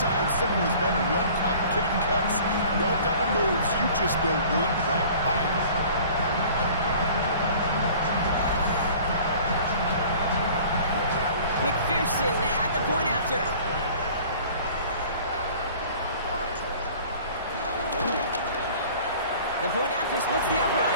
simple is better. No complicated cuts, no double moves. You just go run right by him. McPherson at the point after. The point after splits the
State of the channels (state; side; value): inverted; both; correlation -0.48